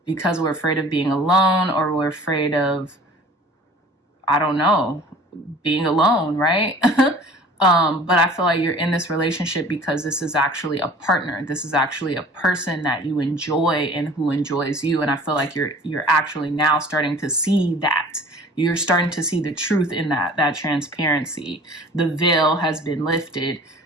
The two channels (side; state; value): both; normal; correlation 0.47